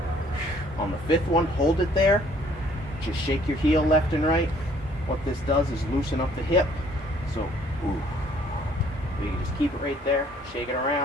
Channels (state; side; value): normal; both; correlation 0.60